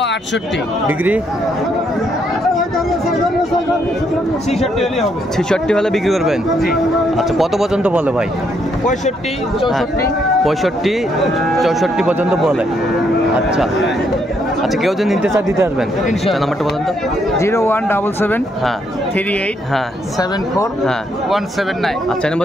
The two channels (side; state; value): both; normal; correlation 0.74